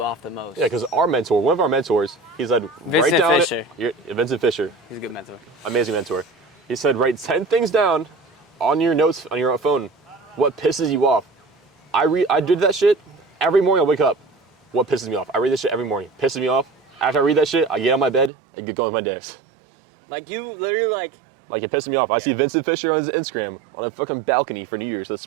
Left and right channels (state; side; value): drops out; left; at 18.3 s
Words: off the most. Yeah, because one of our mentors, he said, write Vincent down Fisher. Vincent Fisher, He's a good mentor. amazing mentor. He said, write 10 things down on your notes on your phone. What pisses you off? I did that shit. Every morning I wake up. What pisses me off? I read this shit every morning. Pisses me off. After I read that shit, I get out of my bed and get going with my days. Like you literally like it pisses me off. I see Vincent Fisher on his Instagram on a fucking balcony for New Year's. The